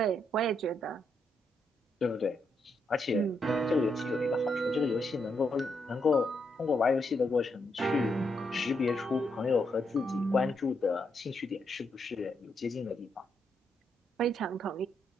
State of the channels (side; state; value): both; normal; correlation 0.79